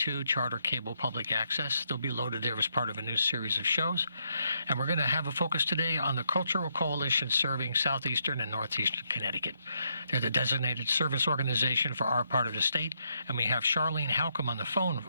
Charter Cable Public Access. They'll be loaded there as part of a new series of shows. And we're going to have a focus today on the Cultural Coalition serving southeastern and northeastern Connecticut. They're the designated service organization for our part of the state, and we have Charlene Halcomb on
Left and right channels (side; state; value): both; inverted; correlation -0.77